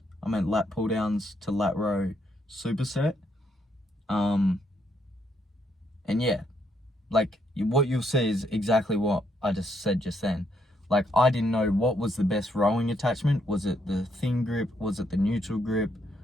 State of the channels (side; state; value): both; normal; correlation 0.75